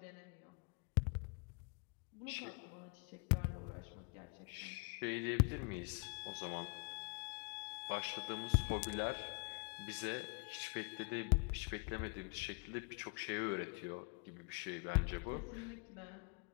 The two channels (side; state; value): right; quieter; 31.9 dB